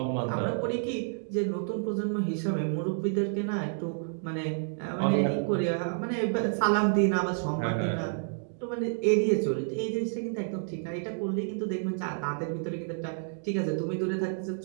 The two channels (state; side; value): silent; left; digital silence